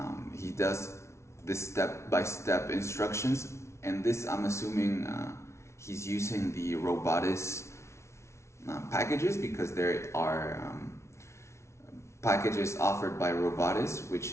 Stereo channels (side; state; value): right; late; 0.13 ms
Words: He does this step-by-step instructions, and this I'm assuming he's using the Robotics packages, because there are packages offered by Robotics,